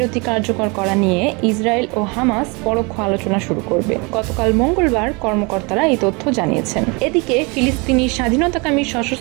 কার্যকর করা নিয়ে ইসরায়েল ও হামাস পরোক্ষ আলোচনা শুরু করবে। গতকাল মঙ্গলবার কর্মকর্তারা এই তথ্য জানিয়েছেন। এদিকে ফিলিস্তিনি স্বাধীনতাকামী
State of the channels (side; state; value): left; quieter; 29.0 dB